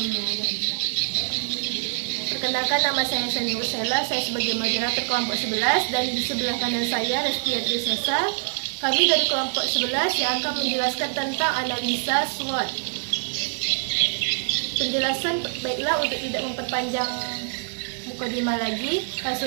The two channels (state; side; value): silent; left; digital silence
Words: ba'du. Perkenalkan, nama saya Sani Ursela, saya sebagai moderator kelompok 11 dan di sebelah kanan saya Restia Trisesa. Kami dari kelompok 11 yang akan menjelaskan tentang analisa SWOT. Penjelasan baiklah, untuk tidak memperpanjang mukadimah lagi, langsung